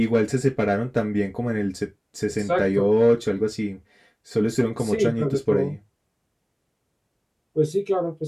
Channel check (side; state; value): both; identical; correlation 1.00